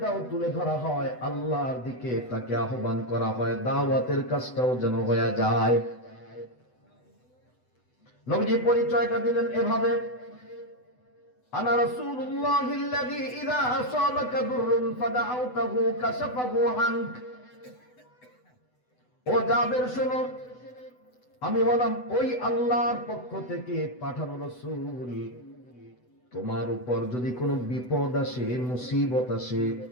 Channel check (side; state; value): right; late; 8.0 ms